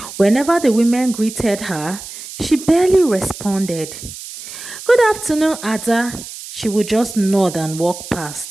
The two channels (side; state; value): right; noise; hiss, 12 dB below the sound